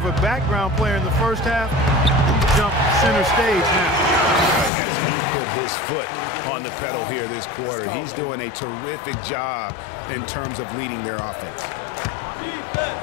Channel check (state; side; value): drops out; right; at 4.7 s